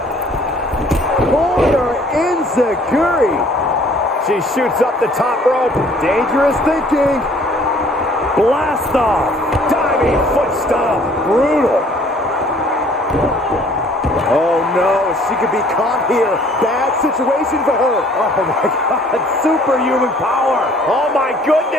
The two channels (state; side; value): normal; both; correlation 0.56